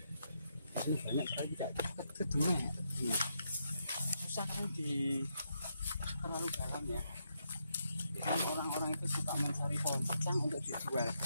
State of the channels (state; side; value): inverted; both; correlation -0.80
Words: Di sini banyak sekali tidak ke dulu ya. Susah kan di terlalu dalam ya. Kan orang-orang itu suka mencari pohon secang untuk dijual. Nah,